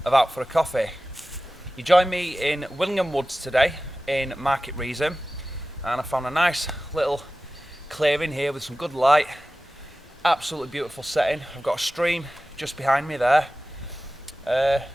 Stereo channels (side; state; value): both; normal; correlation 0.96